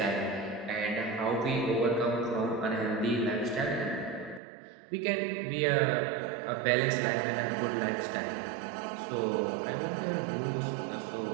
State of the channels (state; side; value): drops out; left; at 4.4 s